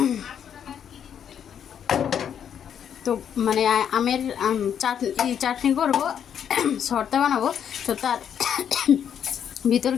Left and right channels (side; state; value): right; quieter; 8.6 dB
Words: তো মানে আমের চাটনি করবো, শর্তা বানাবো। তো তার ভিতর